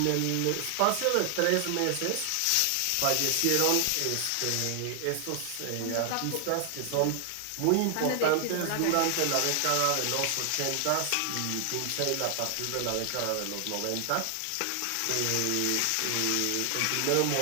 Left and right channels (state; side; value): different; both; correlation 0.00